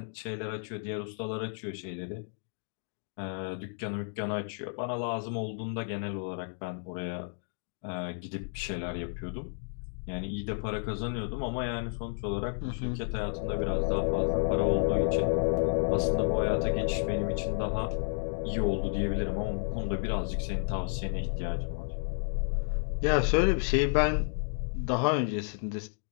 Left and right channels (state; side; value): silent; right; digital silence